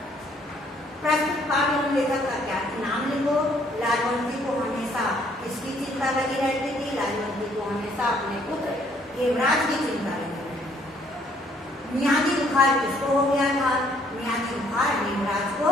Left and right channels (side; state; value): both; normal; correlation 0.65